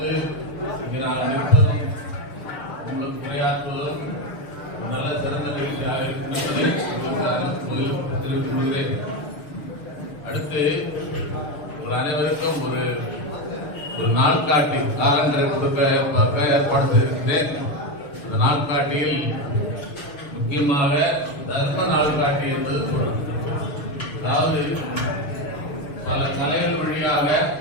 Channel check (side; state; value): right; late; 6.8 ms